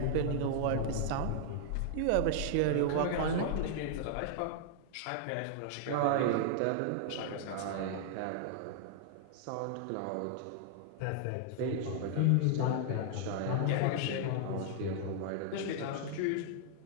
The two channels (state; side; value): different; both; correlation -0.01